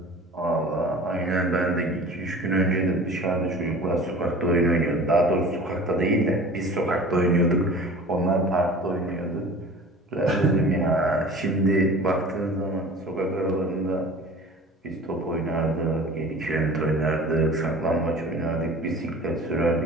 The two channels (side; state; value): both; normal; correlation 0.41